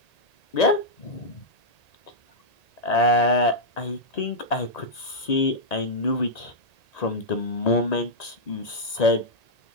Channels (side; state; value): right; late; 1.9 ms